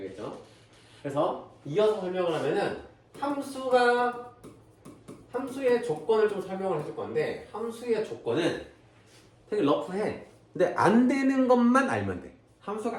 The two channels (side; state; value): both; identical; correlation 1.00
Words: 그래서 이어서 설명을 하면은 함수의 조건을 좀 설명을 해줄 건데, 함수의 조건은 되게 러프해. 근데 안 되는 것만 알면 돼.